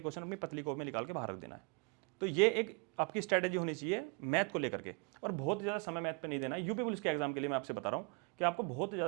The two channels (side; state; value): left; quieter; 32.1 dB